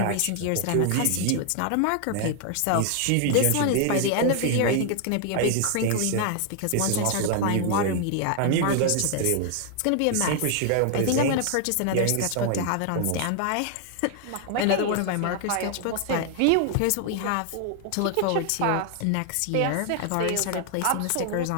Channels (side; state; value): both; different; correlation 0.00